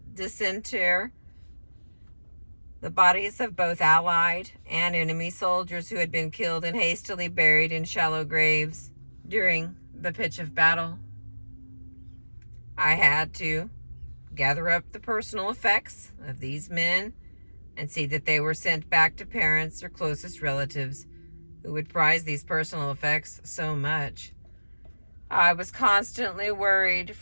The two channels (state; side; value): inverted; both; correlation -1.00